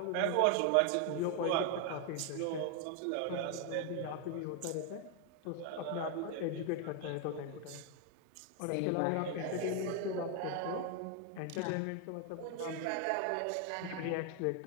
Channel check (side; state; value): both; different; correlation 0.00